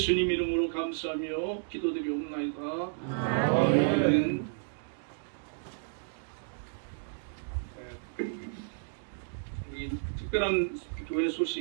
이름으로 감사하며 기도드리옵나이다. 아멘. 우리 특별한 교회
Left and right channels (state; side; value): silent; left; digital silence